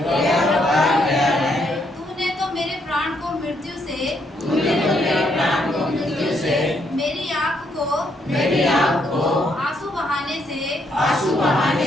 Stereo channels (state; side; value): normal; both; correlation 0.74